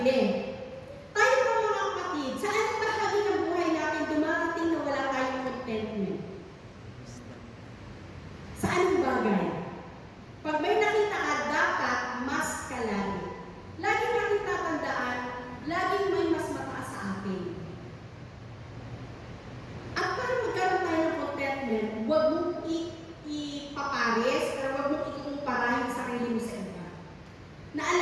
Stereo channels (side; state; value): both; identical; correlation 1.00